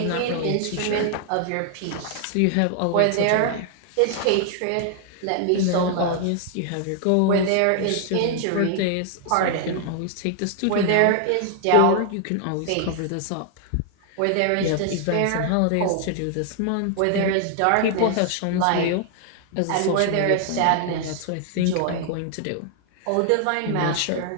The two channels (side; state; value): both; different; correlation 0.00